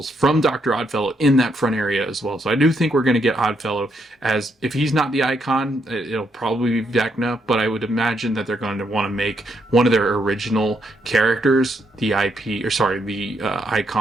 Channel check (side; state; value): both; normal; correlation 0.77